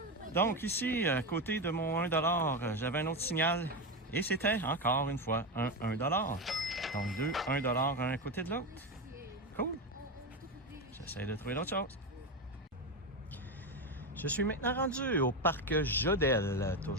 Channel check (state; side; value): normal; both; correlation 0.15